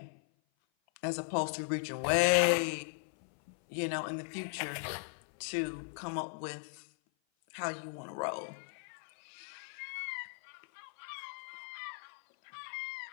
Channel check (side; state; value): right; silent; 53 dB below the other